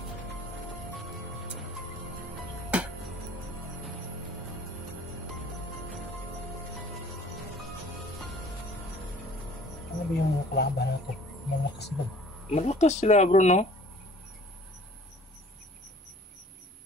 Ano ba yung mga kalaban natin? Malakas ba? Malakas sila bro, no?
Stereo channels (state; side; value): normal; both; correlation 0.51